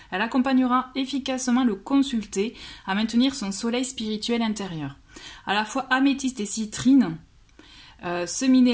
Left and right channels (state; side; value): identical; both; correlation 1.00